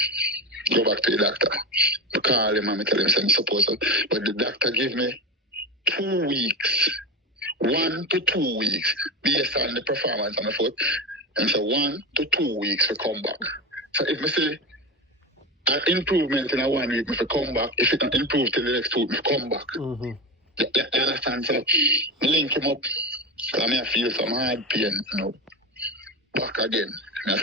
go back to the doctor. I call him and I tell him I'm supposed to. But the doctor gave me 2 weeks, 1 to 2 weeks, based on the performance on the foot. And so 1 to 2 weeks to come back. So if I say an improvement in a 1 week, if I come back, if it not improve till the next week, I come back. You understand? So I link him up. Because I feel some hard pain, you know. Back again. I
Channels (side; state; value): both; normal; correlation 0.22